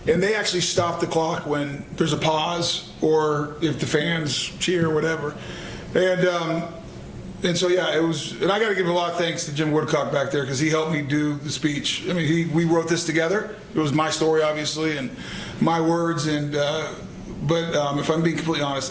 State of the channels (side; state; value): both; identical; correlation 1.00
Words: And they actually stop the clock when there's a pause or if the fans cheer or whatever. And so, yeah, it was, and I got to give a lot of thanks to Jim Woodcock back there because he helped me do the speech. I mean, we wrote this together. It was my story, obviously, and my words. But if I'm being completely